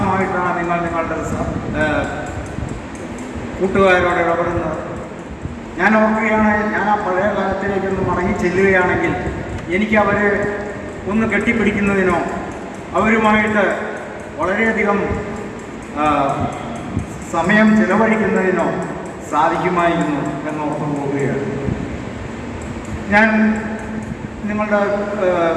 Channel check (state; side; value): identical; both; correlation 1.00